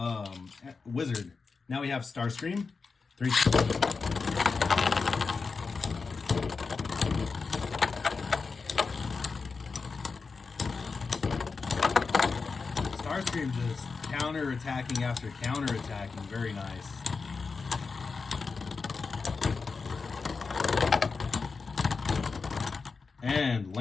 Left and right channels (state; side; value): quieter; right; 4.7 dB